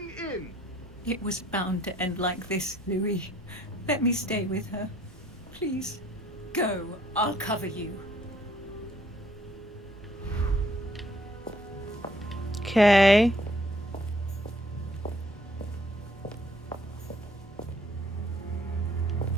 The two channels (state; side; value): normal; both; correlation 0.63